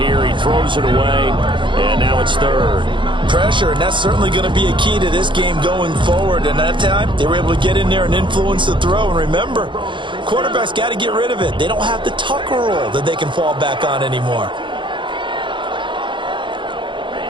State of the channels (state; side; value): late; left; 0.23 ms